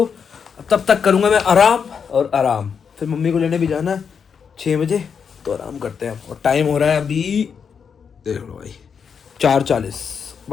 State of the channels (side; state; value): right; quieter; 6.6 dB